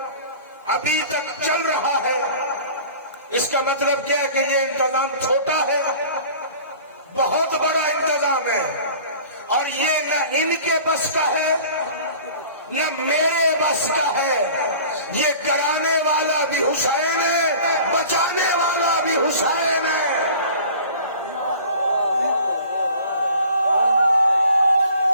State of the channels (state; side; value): inverted; both; correlation -0.44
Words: ابھی تک چل رہا ہے. اس کا مطلب کیا ہے کہ یہ انتظام چھوٹا ہے، بہت بڑا انتظام ہے. اور یہ نہ ان کے بس کا ہے نہ میرے بس کا ہے. یہ کرانے والا بھی حسین ہے، بچانے والا بھی حسین ہے.